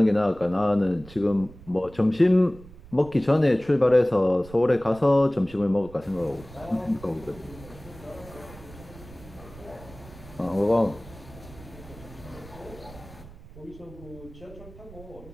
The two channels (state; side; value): noise; right; rumble, 19 dB below the sound